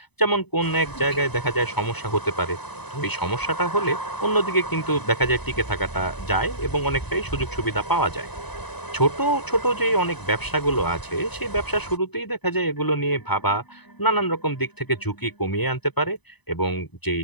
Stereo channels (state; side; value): late; right; 0.99 ms